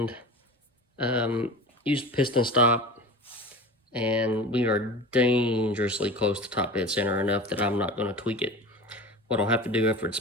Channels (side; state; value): both; normal; correlation 0.33